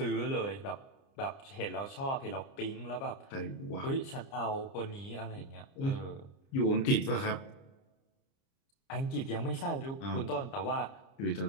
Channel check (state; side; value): late; right; 30 ms